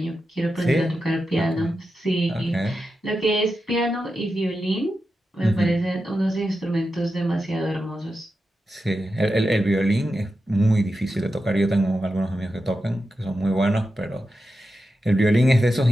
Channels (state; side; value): normal; both; correlation 0.90